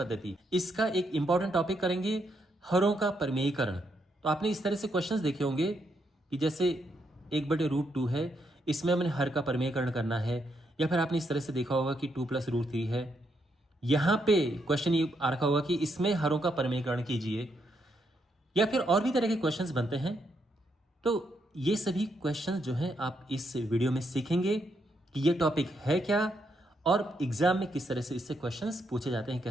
इसका एक इंपॉर्टेंट टॉपिक करेंगे, हरों का परिमेयीकरण। तो आपने इस तरह से क्वेश्चंस देखे होंगे कि जैसे 1/√2 है, इसमें हमने हर का परिमेयीकरण करना है, या फिर आपने इस तरह से देखा होगा कि 2 + √3 है। यहाँ पे क्वेश्चन ये आ रखा होगा कि इसमें हरों का परिमेयीकरण कीजिए, या फिर और भी तरह के क्वेश्चंस बनते हैं। तो ये सभी क्वेश्चंस जो हैं आप इस वीडियो में सीखेंगे कि ये टॉपिक है क्या और एग्जाम में किस तरह से इससे क्वेश्चंस पूछे जाते हैं,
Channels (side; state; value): both; normal; correlation 0.78